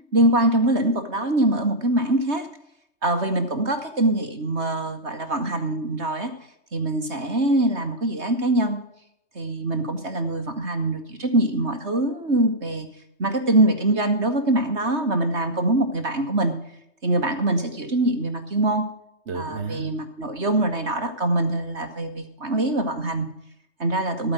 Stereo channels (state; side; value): late; left; 3.2 ms